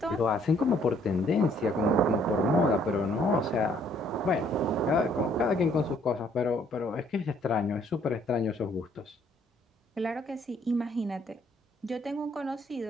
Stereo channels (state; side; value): normal; both; correlation 0.64